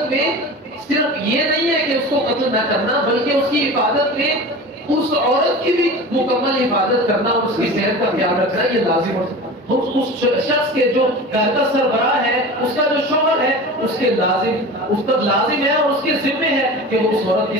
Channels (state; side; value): normal; both; correlation 0.33